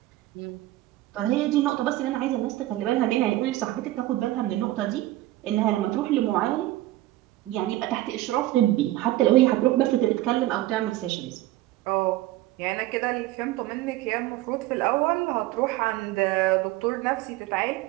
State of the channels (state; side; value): quieter; left; 16.1 dB